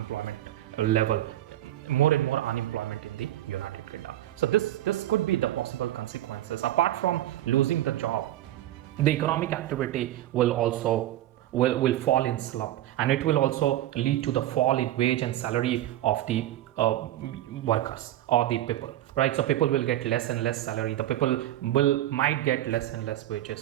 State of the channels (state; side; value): quieter; left; 13.8 dB